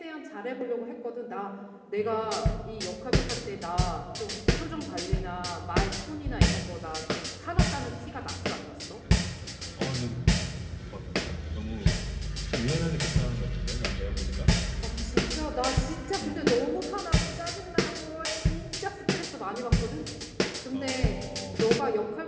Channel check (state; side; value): identical; both; correlation 1.00